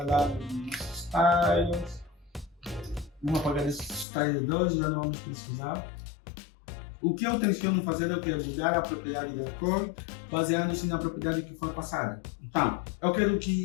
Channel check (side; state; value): right; drops out; at 4.0 s